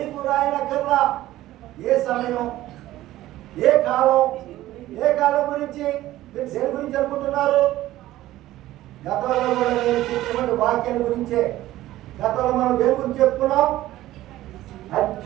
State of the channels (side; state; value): left; quieter; 15.3 dB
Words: రాయనక్కర్లా. ఏ సమయం, ఏ కాలం, ఏ కాలం గురించి మీరు దేని గురించి అనుకుంటున్నారు? గతంలో కూడా నేను చెప్పినటువంటి వాక్యం గురించే. గతంలో మనం దేని గురించి చెప్పుకున్నాం?